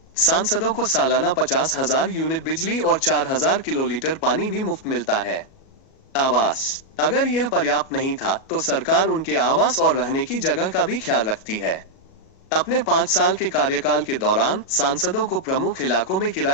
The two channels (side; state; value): right; late; 37 ms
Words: सांसदों को सालाना 50,000 यूनिट बिजली और 4,000 किलोलीटर पानी भी मुफ्त मिलता है। आवास। अगर यह पर्याप्त नहीं था, तो सरकार उनके आवास और रहने की जगह का भी ख्याल रखती है। अपने 5 साल के कार्यकाल के दौरान सांसदों को प्रमुख इलाकों में